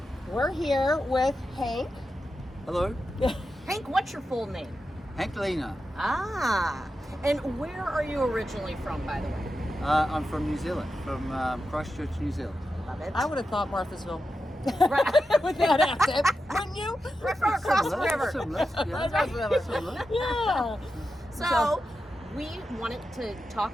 we're here with Hank. Hello, Hank, what's your full name? Hank Lena. Ah. And where are you originally from, by the way? I'm from New Zealand, from Christchurch, New Zealand. Love it. I would have thought Marthasville. Right. With that accent, wouldn't you? Right from across the Similar, river. Similar, yeah. Similar. Yeah. So we wanted to talk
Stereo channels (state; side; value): normal; both; correlation 0.90